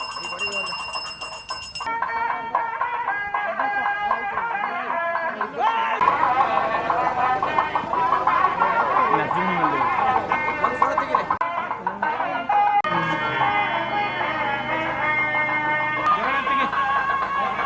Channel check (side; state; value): both; identical; correlation 1.00